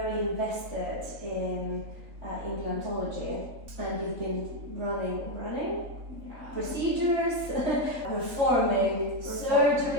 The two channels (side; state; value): left; late; 3.3 ms